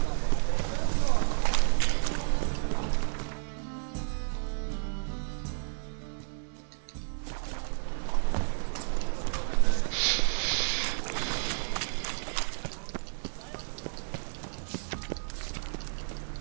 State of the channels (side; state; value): left; silent; 56 dB below the other